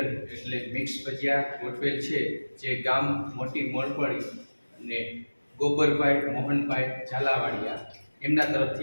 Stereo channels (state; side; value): inverted; both; correlation -1.00